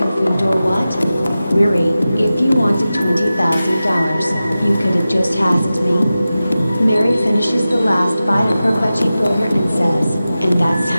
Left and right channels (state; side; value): inverted; both; correlation -0.95